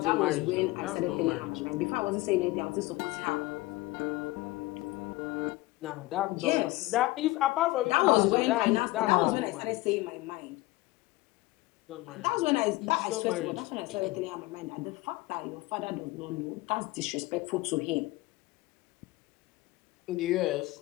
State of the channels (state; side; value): quieter; right; 19.9 dB